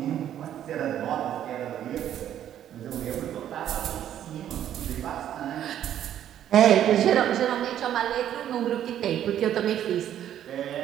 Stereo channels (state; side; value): quieter; left; 10.8 dB